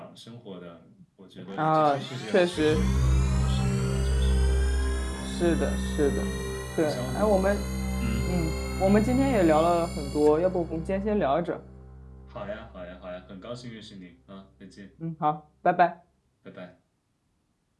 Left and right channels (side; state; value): both; identical; correlation 1.00